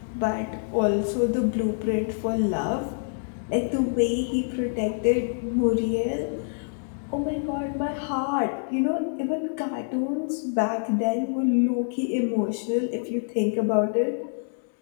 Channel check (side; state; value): right; silent; digital silence